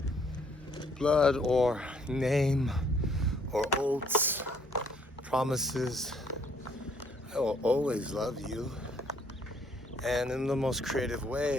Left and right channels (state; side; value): normal; both; correlation 0.65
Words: blood or name or oaths, promises, I will always love you. And in the most creative